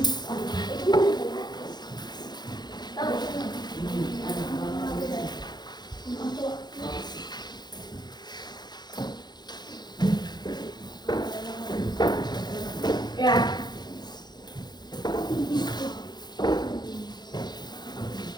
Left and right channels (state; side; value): late; right; 0.21 ms